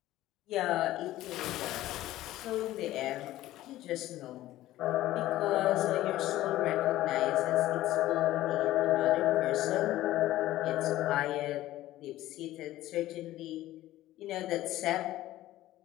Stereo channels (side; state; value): right; quieter; 15.1 dB